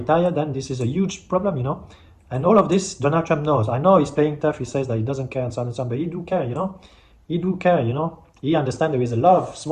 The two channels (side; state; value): both; identical; correlation 1.00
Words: then this is a huge problem, you know. And all of this, Donald Trump knows. I know he's playing tough, he says that he doesn't care and so on and so on, but he do care, you know. He do care, you know. He understands there is a lot of